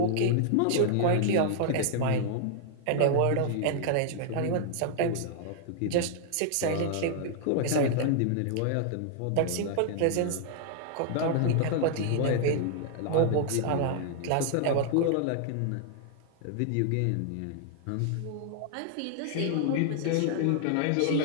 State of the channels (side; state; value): both; different; correlation 0.00